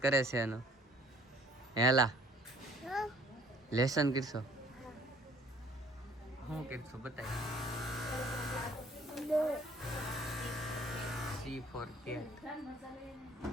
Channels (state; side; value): normal; both; correlation 0.57